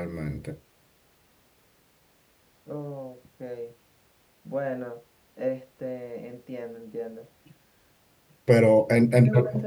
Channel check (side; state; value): both; identical; correlation 1.00